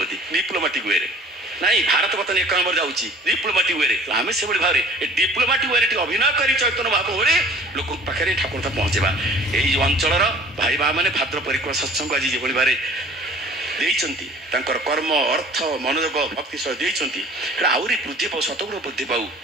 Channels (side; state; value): both; normal; correlation 0.48